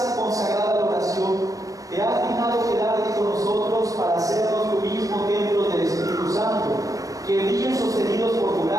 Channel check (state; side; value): late; left; 0.16 ms